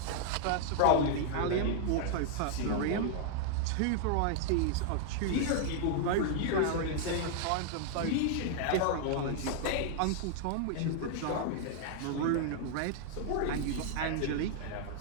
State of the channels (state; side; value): different; both; correlation 0.00